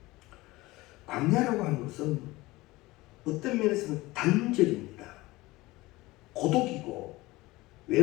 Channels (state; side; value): quieter; right; 20.2 dB